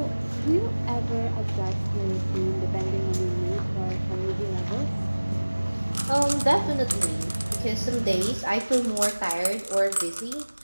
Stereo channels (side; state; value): both; inverted; correlation -1.00